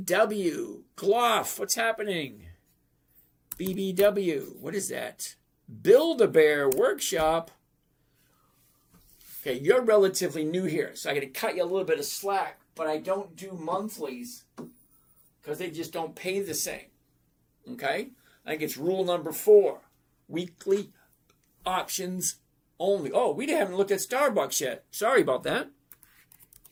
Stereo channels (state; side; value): identical; both; correlation 1.00